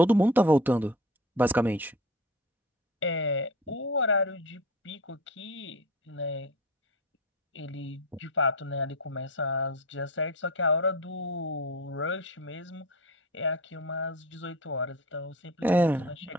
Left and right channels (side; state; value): both; normal; correlation 0.33